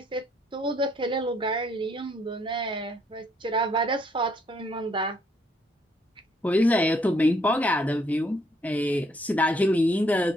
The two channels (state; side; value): normal; both; correlation 0.69